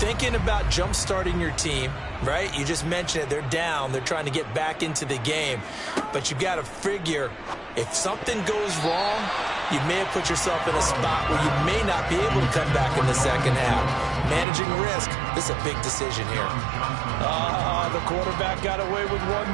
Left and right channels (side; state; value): left; drops out; at 14.5 s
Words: about jump-starting your team, right? You just mentioned it. They're down. They're trying to get back into the game. But you got to figure if something goes wrong, you may have put yourself in a spot where you may not be able to come back in the second half. Managing risk, this is a big decision here. The quarterback got away with